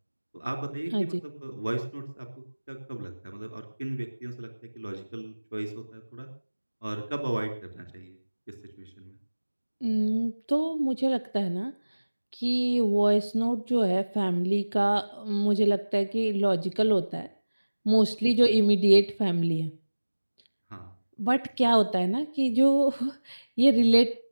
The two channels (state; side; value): inverted; both; correlation -1.00